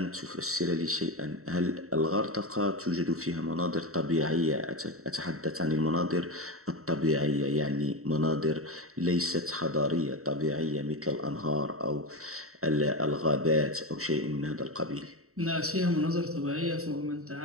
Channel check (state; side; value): late; left; 0.64 ms